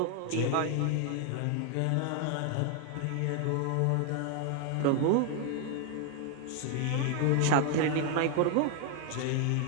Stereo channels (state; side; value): different; both; correlation 0.00